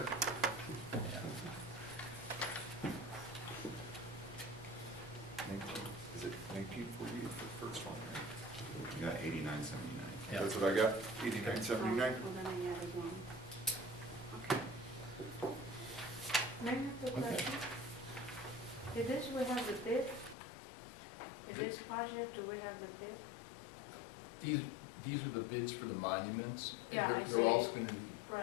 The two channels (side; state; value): right; drops out; at 20.4 s